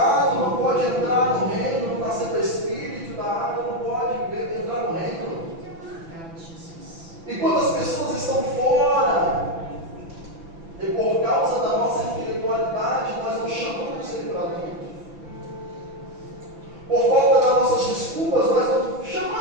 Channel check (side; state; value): left; late; 6.0 ms